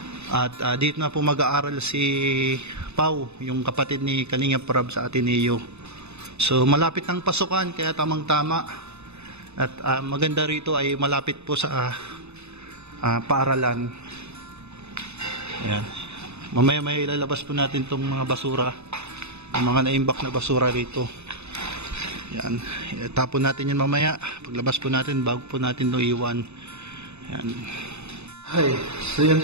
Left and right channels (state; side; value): late; left; 0.81 ms